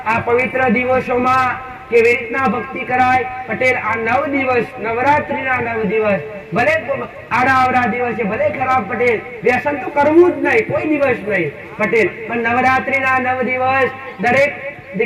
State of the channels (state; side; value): identical; both; correlation 1.00